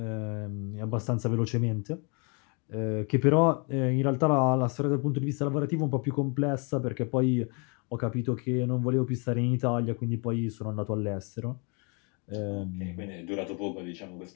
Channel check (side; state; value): right; quieter; 34.1 dB